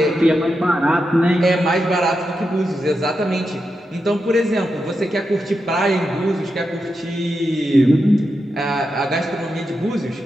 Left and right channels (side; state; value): both; normal; correlation 0.87